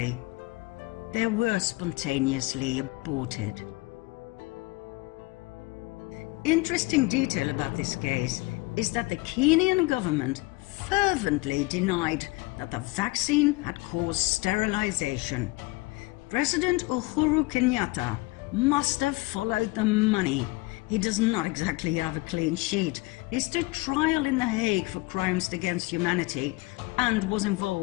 They were spontaneously aborted. Interesting detail about this case is that the Kenyan government fervently denied that the vaccine had caused sterilization. President Uhuru Kenyatta must have followed the money. He does not exactly have a clean sheet. He stood trial in The Hague for crimes against humanity and was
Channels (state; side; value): quieter; right; 22.7 dB